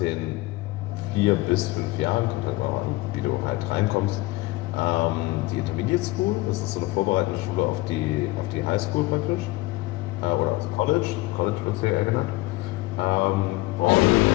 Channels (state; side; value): quieter; right; 20.3 dB